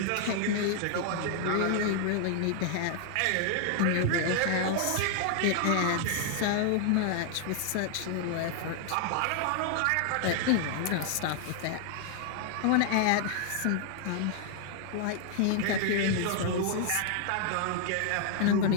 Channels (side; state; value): both; different; correlation 0.00